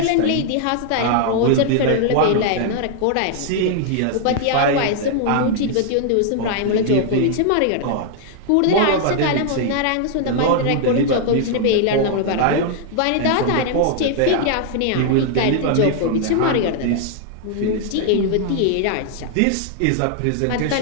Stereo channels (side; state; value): both; different; correlation 0.00